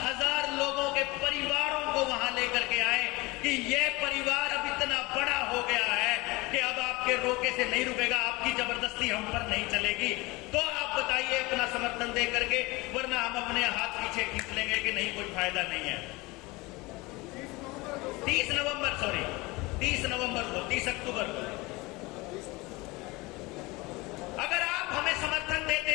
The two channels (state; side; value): quieter; right; 23.1 dB